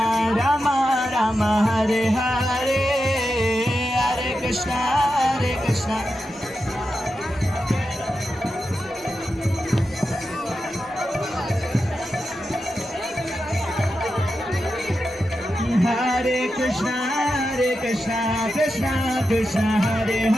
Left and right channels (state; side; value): normal; both; correlation 0.89